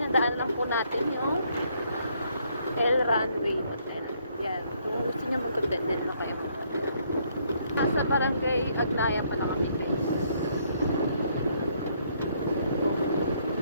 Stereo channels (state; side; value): inverted; both; correlation -0.69